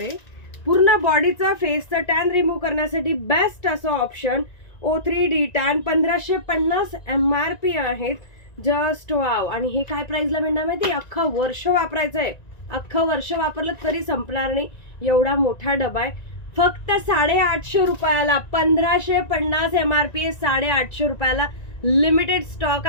पूर्ण बॉडीचा फेसचा टॅन रिमूव्ह करण्यासाठी बेस्ट असं ऑप्शन O3 डिटॅन 1550 MRP आहेत. Just wow. आणि हे काय प्राइसला मिळणार माहिती? अख्खं वर्ष वापरायचंय. अख्खं वर्ष वापरलं तरी संपणार नाही एवढा मोठा डबा आहे. फक्त 850 रुपयाला 1550 MRP 850 रुपयाला लिमिटेड स्टॉक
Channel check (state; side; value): late; right; 1.9 ms